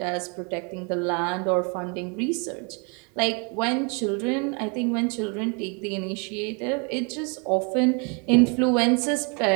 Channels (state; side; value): quieter; left; 34.7 dB